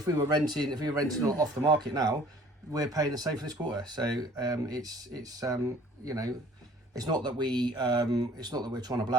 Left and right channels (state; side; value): normal; both; correlation 0.53